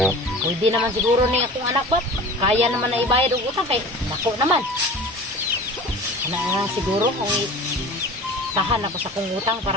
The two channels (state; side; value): normal; both; correlation 0.38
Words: Pwede naman siguro ni akong anak ba kaya naman na ibayad og utang kay dako naman. Ana siguro kung tahan ako sa kong utang